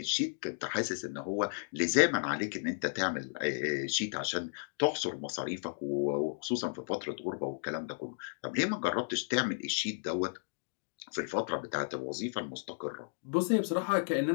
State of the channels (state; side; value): silent; right; digital silence